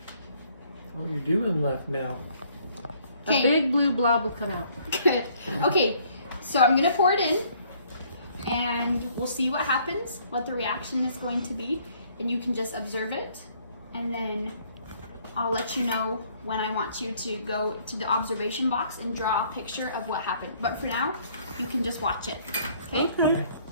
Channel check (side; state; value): both; inverted; correlation -0.62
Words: Oh, you're doing left now. A Okay. big blue blob will come out. Good. Okay, so I'm gonna pour it in, and we'll see what happens, what the reaction is going to be, and you can just observe it, and then I'll let you know when I want you to go to the observation box and draw a picture of what happened. But for now, you can just watch it. Okay? Okay.